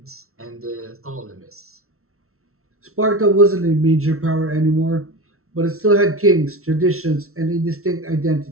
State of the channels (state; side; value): late; left; 0.63 ms